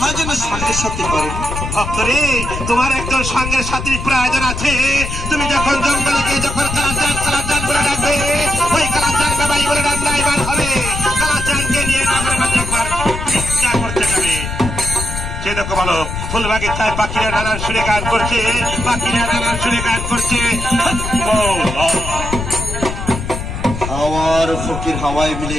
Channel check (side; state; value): left; noise; rumble, 6 dB below the sound